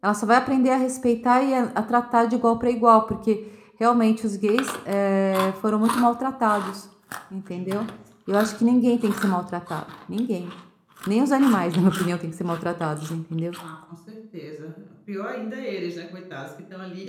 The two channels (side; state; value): both; identical; correlation 1.00